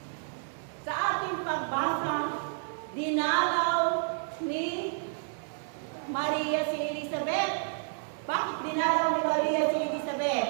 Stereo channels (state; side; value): silent; left; digital silence